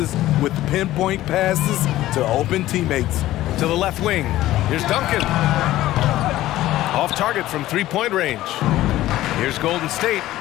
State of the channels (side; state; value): right; quieter; 15.2 dB